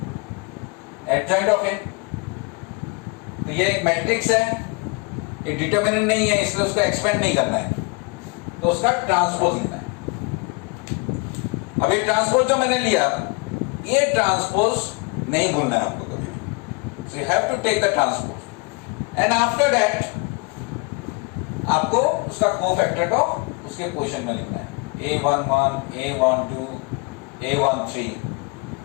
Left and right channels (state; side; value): quieter; right; 31.1 dB